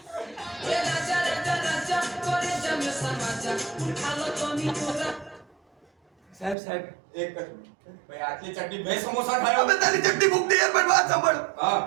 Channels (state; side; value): drops out; left; at 6.6 s